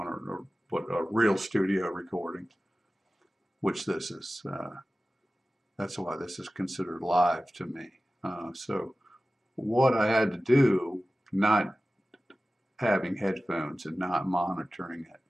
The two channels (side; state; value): both; normal; correlation 0.96